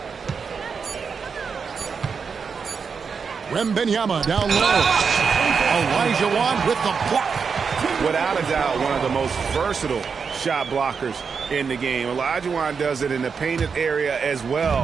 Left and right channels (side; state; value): left; quieter; 5.8 dB